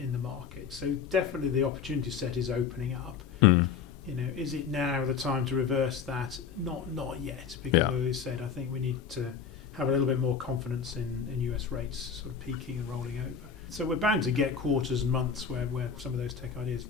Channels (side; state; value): right; quieter; 6.6 dB